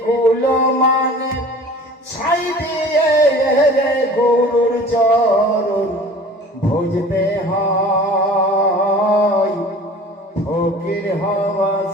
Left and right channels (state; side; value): normal; both; correlation 0.43